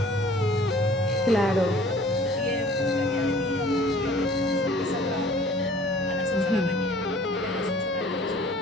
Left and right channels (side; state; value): both; normal; correlation 0.51